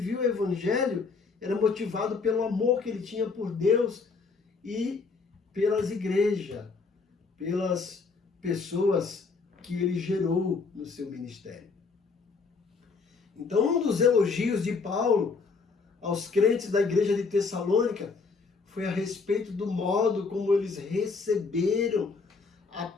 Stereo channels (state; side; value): quieter; right; 4.6 dB